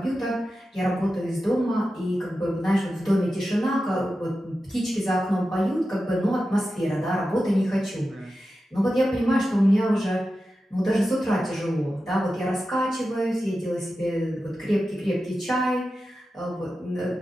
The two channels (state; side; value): normal; both; correlation 0.92